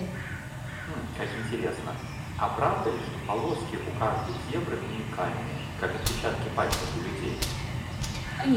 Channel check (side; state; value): both; identical; correlation 1.00